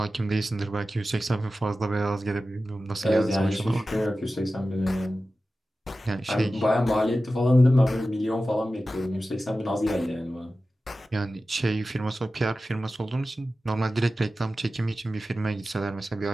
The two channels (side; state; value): both; normal; correlation 0.94